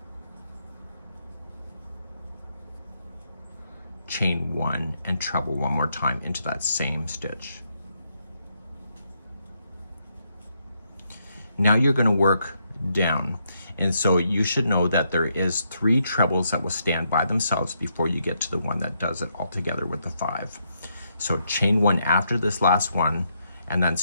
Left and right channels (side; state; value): both; inverted; correlation -0.77